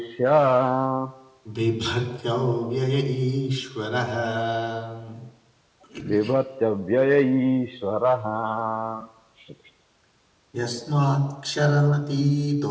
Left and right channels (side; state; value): both; identical; correlation 1.00